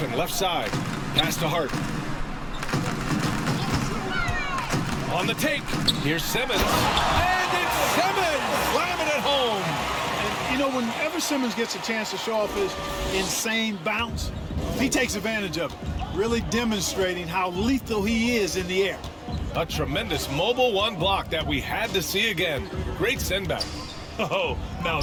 left side. Pass to Hart. On the take. Here's Simmons. And it's Simmons! Slamming it home. And, you know, whenever Simmons gets a chance to show off his insane bounce, he takes advantage of it. Really demonstrating how lethal he is in the air. A tremendous mobile 1 block that we had to see again. Great send back. Oh, now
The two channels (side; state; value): both; identical; correlation 1.00